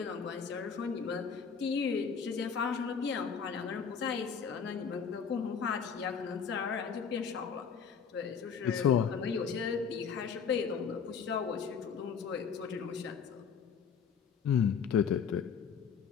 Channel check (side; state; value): right; quieter; 6.6 dB